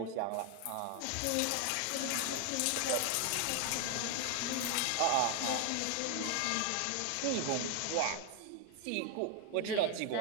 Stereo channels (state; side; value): different; both; correlation 0.01